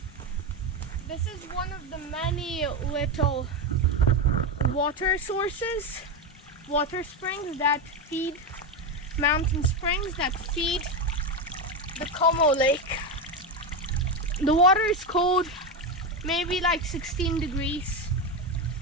This is one of the many little water sources, water springs that feed, mountain springs that feed the Como Lake. The water is cold, maybe like 16 degrees,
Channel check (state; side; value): normal; both; correlation 0.13